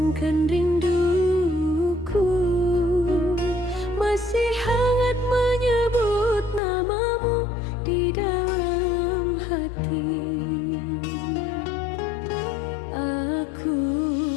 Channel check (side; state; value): right; drops out; at 6.6 s